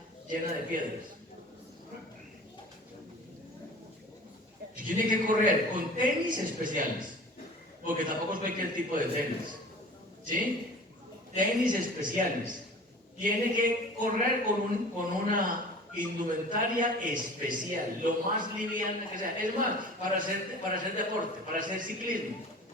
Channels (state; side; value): normal; both; correlation 0.42